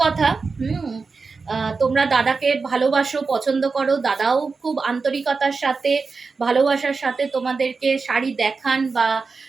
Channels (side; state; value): left; quieter; 4.5 dB